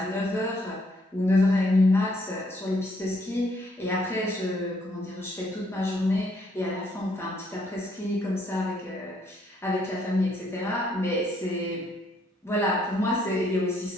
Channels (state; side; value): normal; both; correlation 0.69